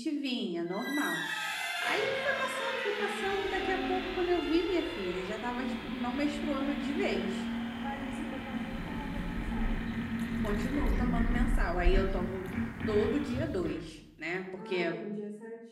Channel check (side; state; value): both; identical; correlation 1.00